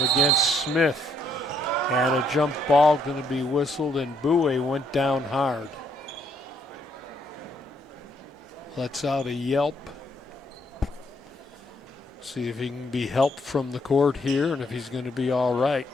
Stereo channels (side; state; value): both; normal; correlation 0.71